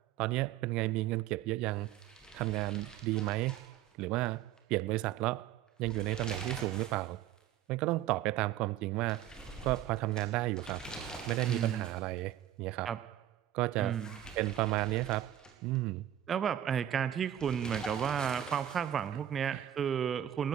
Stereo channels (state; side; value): quieter; left; 12.0 dB